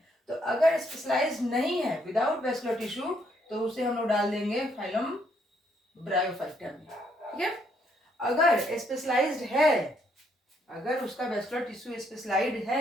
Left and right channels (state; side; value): normal; both; correlation 0.72